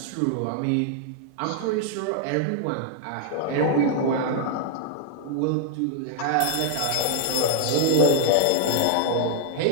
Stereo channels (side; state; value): both; different; correlation -0.01